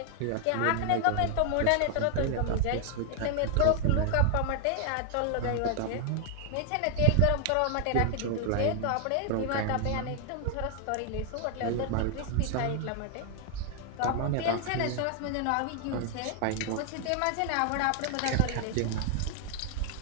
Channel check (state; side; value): different; both; correlation 0.00